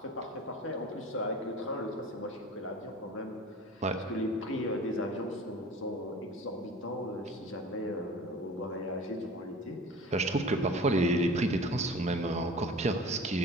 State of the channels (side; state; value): both; normal; correlation 0.41